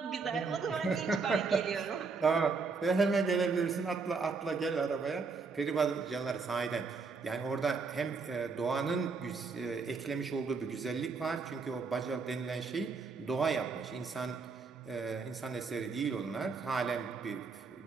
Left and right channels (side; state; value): left; quieter; 4.7 dB